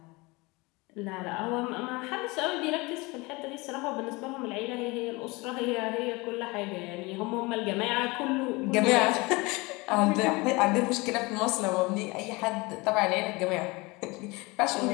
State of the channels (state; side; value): quieter; right; 24.5 dB